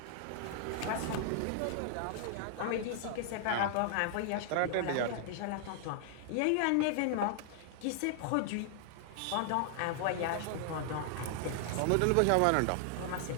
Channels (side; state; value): both; different; correlation -0.01